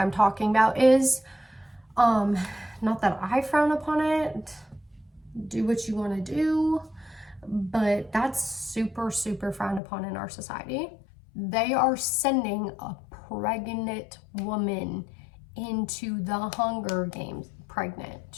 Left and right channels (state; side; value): drops out; right; at 9.8 s